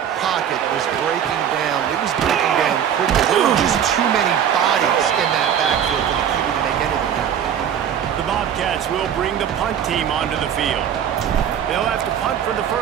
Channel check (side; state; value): left; quieter; 9.0 dB